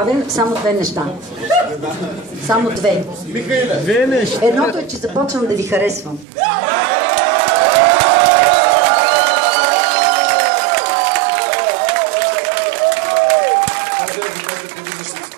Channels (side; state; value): left; drops out; at 6.2 s